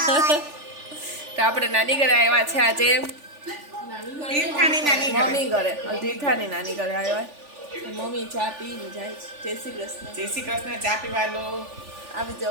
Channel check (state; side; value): late; left; 3.4 ms